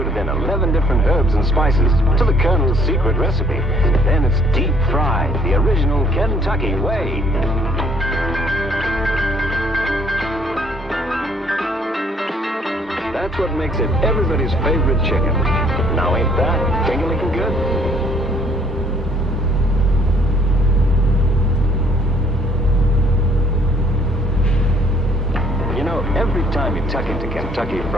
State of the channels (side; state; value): both; normal; correlation 0.62